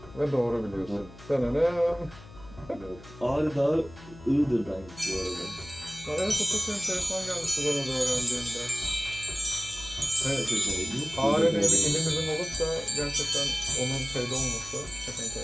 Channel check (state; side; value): noise; left; hum, 19 dB below the sound